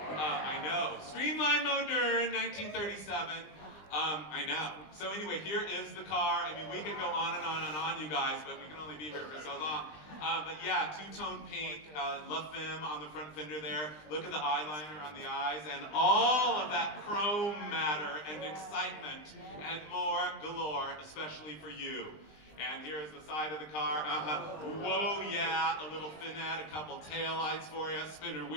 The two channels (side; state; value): right; late; 20 ms